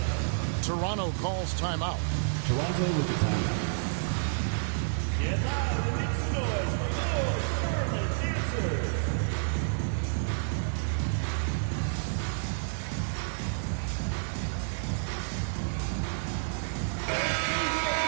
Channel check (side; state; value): left; silent; digital silence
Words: Toronto calls timeout. Toronto with the timeout.